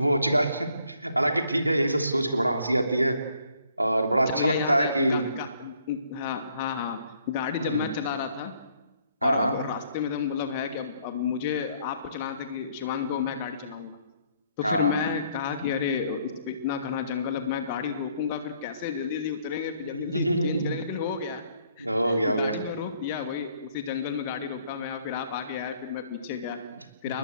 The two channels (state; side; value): inverted; both; correlation -0.65